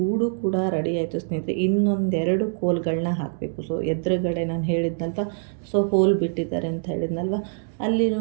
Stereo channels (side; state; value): left; silent; digital silence